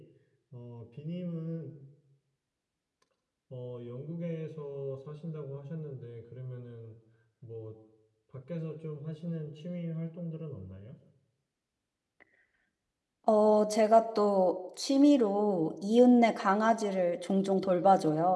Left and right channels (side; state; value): both; identical; correlation 1.00